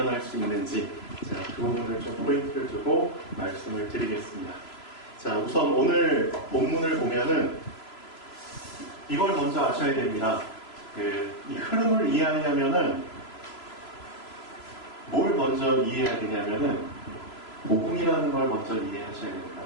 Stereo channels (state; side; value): late; right; 3.0 ms